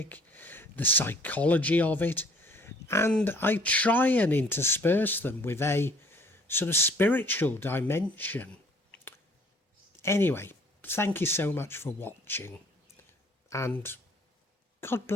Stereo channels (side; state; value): both; normal; correlation 0.57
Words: the psychology of it, and I try and intersperse them with a sort of spiritual dimension. Anyway, thank you so much for watching, and God